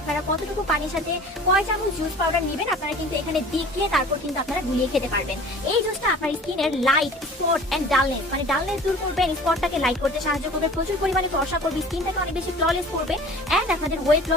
কতটুকু পানির সাথে কয় চামচ জুস পাউডার নেবেন আপনারা কিন্তু এখানে দেখিয়ে তারপর কিন্তু আপনারা গুলিয়ে খেতে পারবেন। এই জুসটা আপনার স্কিনের লাইট স্পট এন্ড ডালনেস, মানে ডালনেস দূর করবে, স্পটটাকে লাইট করতে সাহায্য করবে, প্রচুর পরিমাণে ফর্সা করবে, স্কিনটাকে অনেক বেশি ফ্ললেস করবে, এন্ড আপনাদের ওয়েট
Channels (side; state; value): both; normal; correlation 0.44